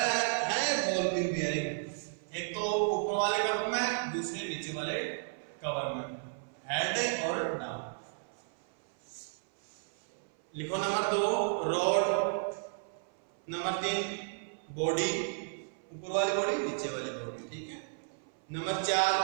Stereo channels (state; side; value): silent; left; 55 dB below the other